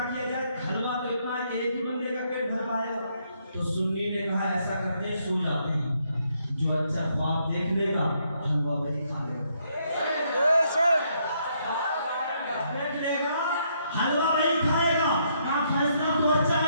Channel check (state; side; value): inverted; both; correlation -0.73